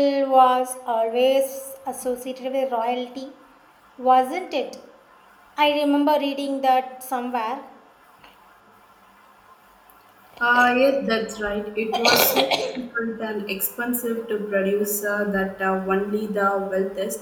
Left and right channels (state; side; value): identical; both; correlation 1.00